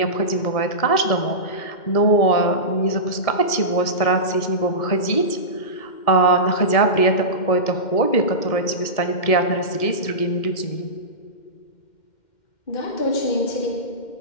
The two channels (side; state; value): right; late; 2.1 ms